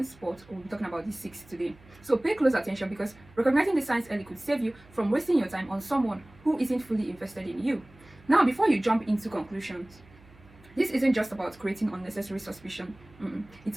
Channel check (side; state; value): right; noise; hum, 25 dB below the sound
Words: but we'll be talking about these 6 today. So pay close attention because recognizing the signs early could save you from wasting your time on someone who isn't fully invested in you. Now, before you jump into conclusions, this isn't just about creating unnecessary suspicion. It's